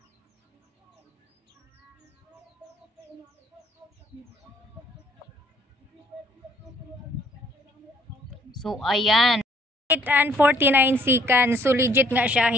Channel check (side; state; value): both; normal; correlation 0.63